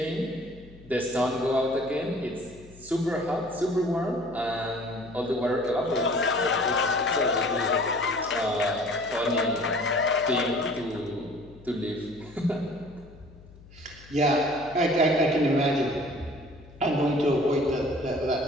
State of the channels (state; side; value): noise; left; hum, 21 dB below the sound